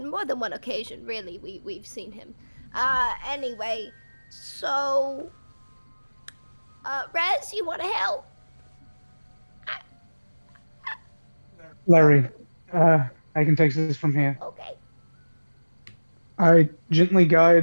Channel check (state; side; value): inverted; both; correlation -1.00